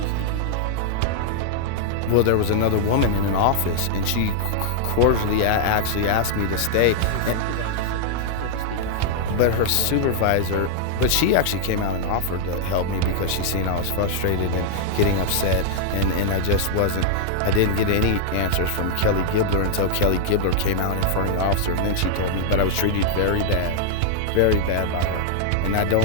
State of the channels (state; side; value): different; both; correlation -0.01